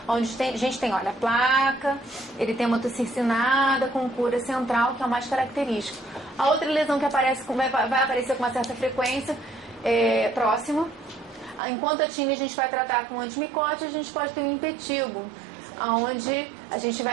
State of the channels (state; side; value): drops out; left; at 11.6 s